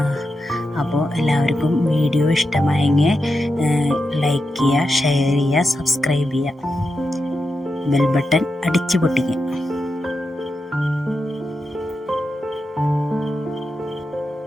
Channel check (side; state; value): both; normal; correlation 0.88